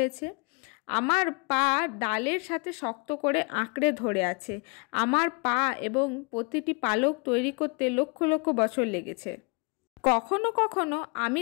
আমার পা ডালের সাথে শক্ত করে আঁকড়ে ধরে আছে। আমার পা এবং প্রতিটি পালক তৈরি করতে লক্ষ লক্ষ বছর লেগেছে। কখনো কখনো আমি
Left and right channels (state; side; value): quieter; right; 33.5 dB